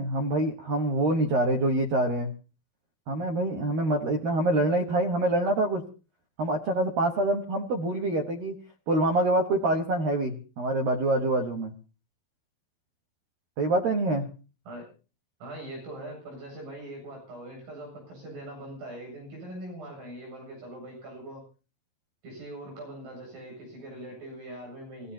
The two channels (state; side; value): late; left; 12 ms